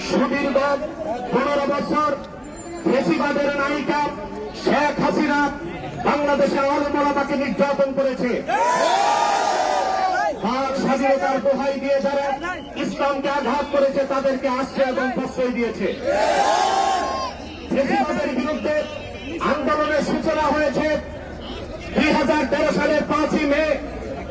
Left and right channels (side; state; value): both; identical; correlation 1.00